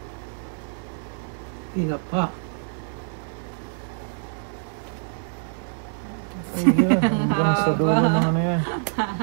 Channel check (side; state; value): left; silent; digital silence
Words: Tinapa. Ayan, hanggang sa dulo ng ano yan.